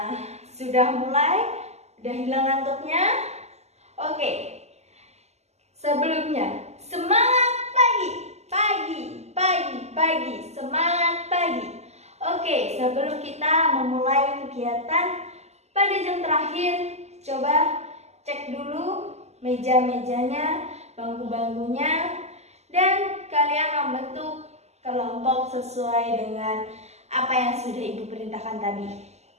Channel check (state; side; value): late; left; 0.32 ms